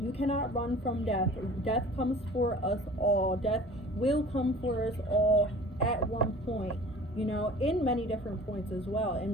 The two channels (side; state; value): both; normal; correlation 0.44